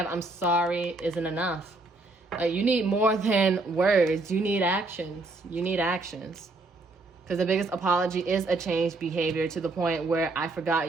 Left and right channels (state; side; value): quieter; left; 3.2 dB